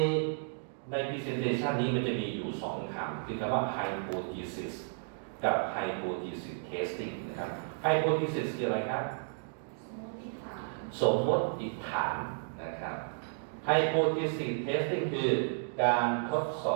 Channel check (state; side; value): silent; left; digital silence